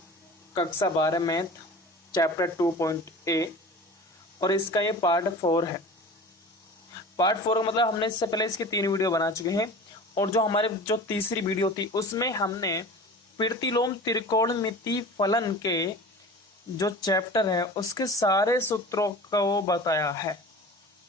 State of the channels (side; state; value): both; normal; correlation 0.38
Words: कक्षा 12 मैथ चैप्टर 2.a और इसका ये पार्ट 4 है। पार्ट 4 का मतलब हमने इससे पहले इसकी 3 वीडियो बना चुके हैं और जो हमारे जो तीसरी वीडियो थी उसमें हमने प्रतिलोम त्रिकोणमिति फलन के जो चैप्टर है उसके सारे सूत्रों को बताया है।